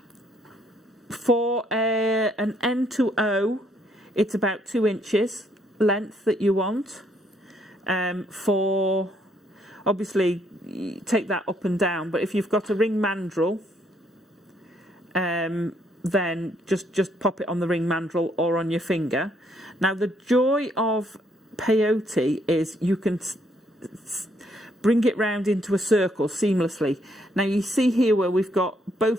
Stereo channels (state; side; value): normal; both; correlation 0.70